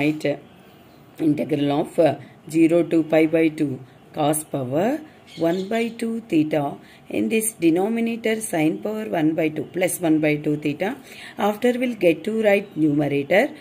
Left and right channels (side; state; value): both; identical; correlation 1.00